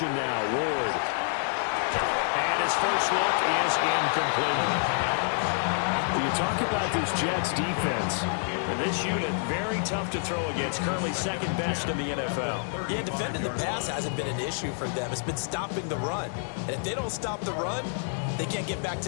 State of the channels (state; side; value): silent; right; 59 dB below the other